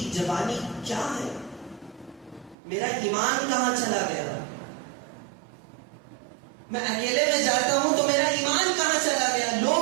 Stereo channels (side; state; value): left; drops out; at 2.6 s